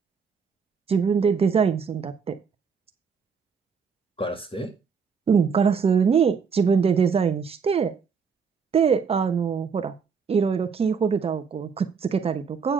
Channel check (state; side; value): quieter; left; 6.0 dB